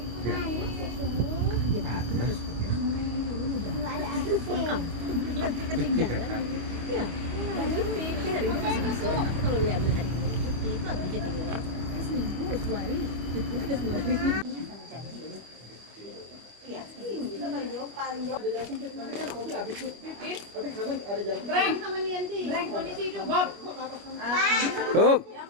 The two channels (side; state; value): left; late; 25 ms